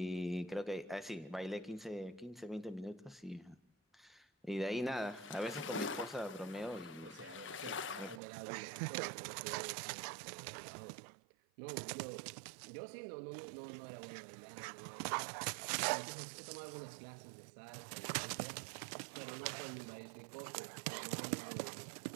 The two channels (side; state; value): left; drops out; at 8.2 s